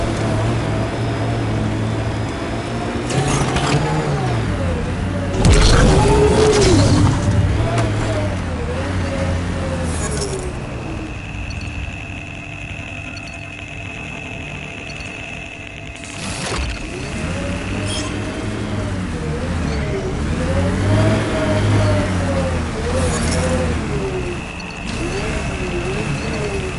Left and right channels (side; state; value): both; identical; correlation 1.00